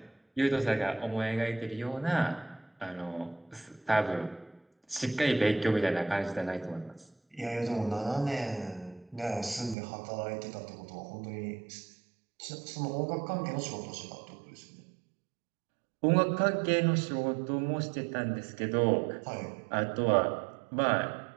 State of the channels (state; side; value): drops out; left; at 9.8 s